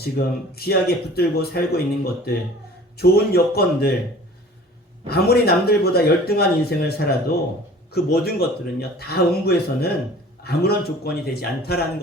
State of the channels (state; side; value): normal; both; correlation 0.46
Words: 귀하게 붙들고 살고 있는 것들, 좋은 여건들, 아무리 남들보다 열등한 인생을 살아도 그 모든 것들은요, 다 음부에서는 아무런 조건이 되지 않다라는